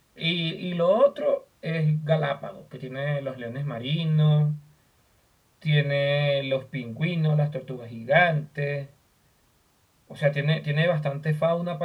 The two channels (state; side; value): identical; both; correlation 1.00